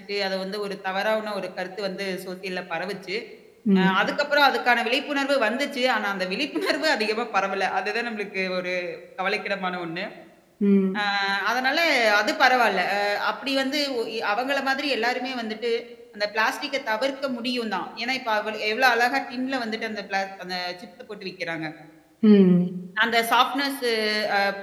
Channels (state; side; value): identical; both; correlation 1.00